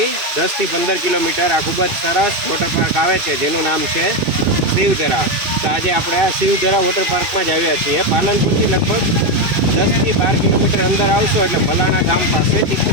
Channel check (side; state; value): left; late; 2.6 ms